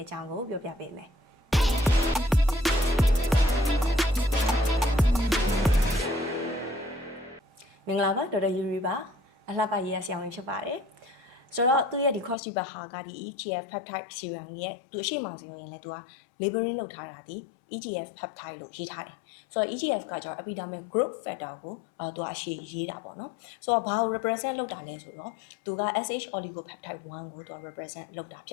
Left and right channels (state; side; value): drops out; right; at 12.4 s